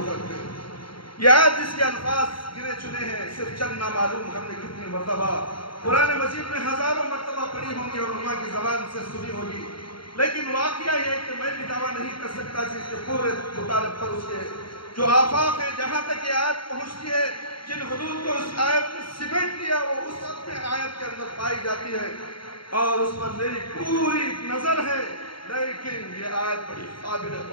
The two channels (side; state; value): right; late; 0.74 ms